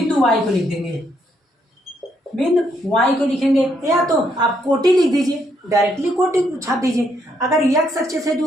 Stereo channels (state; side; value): normal; both; correlation 0.74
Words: वाई को लिख देंगे, बिंदु वाई को लिखेंगे, या तो आप कोटि लिख दीजिए, डायरेक्टली कोटि छाप दीजिए। अगर एक्स अक्ष से